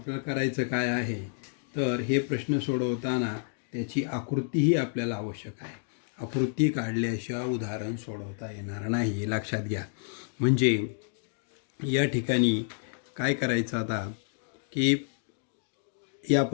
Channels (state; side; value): silent; right; digital silence